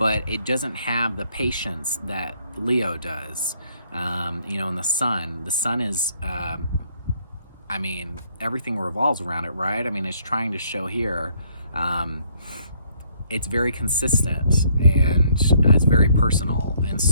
it doesn't have the patience that Leo does. And the sun is, everything revolves around it, right? It's trying to show here, it's very consistent and it's very personal. And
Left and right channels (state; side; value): inverted; both; correlation -0.66